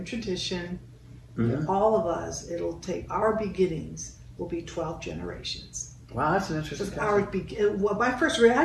Tradition, all of us. It'll take our beginnings will be 12 generations. Wow, that's an interesting concept. Well, my first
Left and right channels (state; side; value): identical; both; correlation 1.00